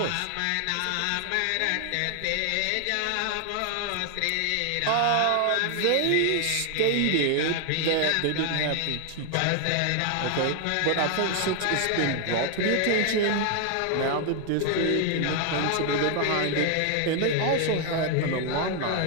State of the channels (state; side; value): different; both; correlation 0.00